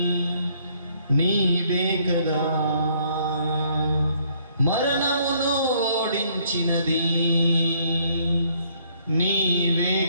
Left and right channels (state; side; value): inverted; both; correlation -0.65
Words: నీవే కదా, మరణమును ఓడించినది నీవే